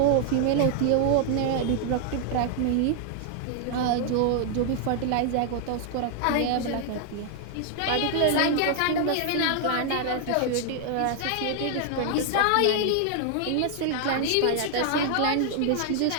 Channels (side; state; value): both; different; correlation 0.00